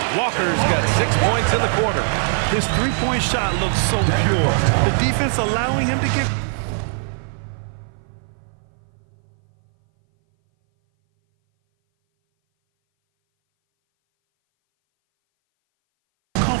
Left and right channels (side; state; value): left; silent; 59 dB below the other